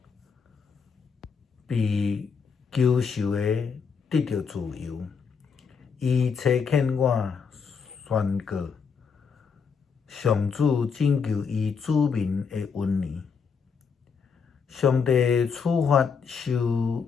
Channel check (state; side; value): quieter; right; 5.9 dB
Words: 被囚受的得到自由。伊差遣我宣告上主拯救伊子民的恩年。上帝处罚受